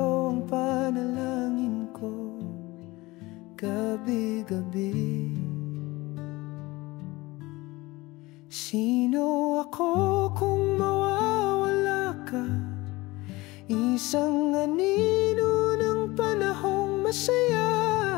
ang panalangin ko gabi-gabi? Sino ako kung mawawala ka? Isang anino ng panahong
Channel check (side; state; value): right; quieter; 21.1 dB